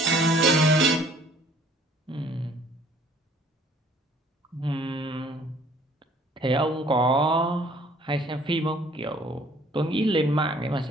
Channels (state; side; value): normal; both; correlation 0.57